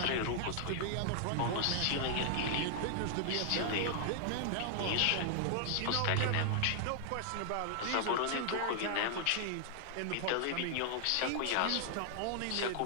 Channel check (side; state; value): both; different; correlation 0.00